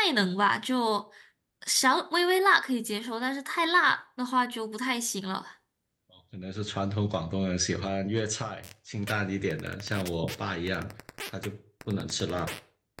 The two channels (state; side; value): identical; both; correlation 1.00